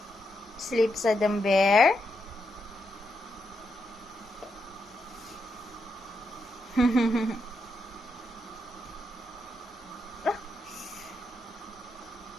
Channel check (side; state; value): both; normal; correlation 0.82